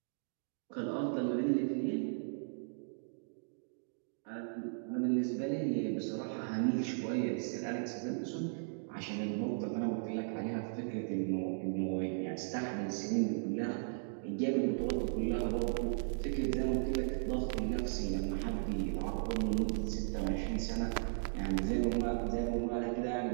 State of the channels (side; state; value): left; silent; digital silence